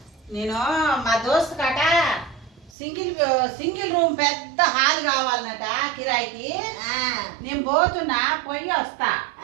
నేను మా దోస్తు కట సింగిల్ సింగిల్ రూమ్ పెద్ద హాల్ కావాలన్నట కిరాయికి. నేను పోతున్నా, పోయి వస్తా.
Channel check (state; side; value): drops out; left; at 2.7 s